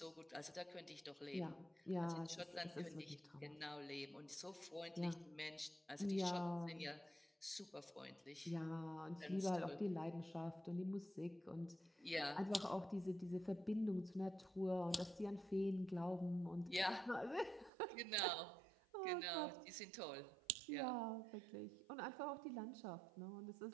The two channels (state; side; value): drops out; left; at 17.7 s